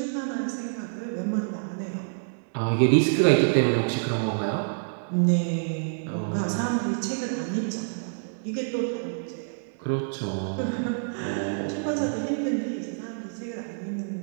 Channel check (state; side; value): silent; left; digital silence